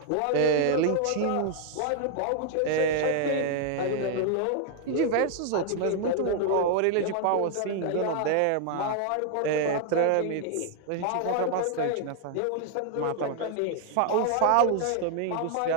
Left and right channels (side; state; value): both; different; correlation 0.00